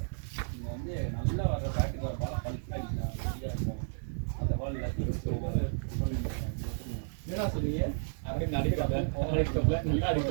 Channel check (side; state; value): left; silent; digital silence